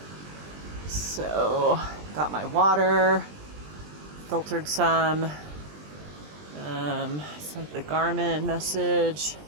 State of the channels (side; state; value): left; late; 20 ms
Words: So, got my water, filtered some, sent the Garmin message,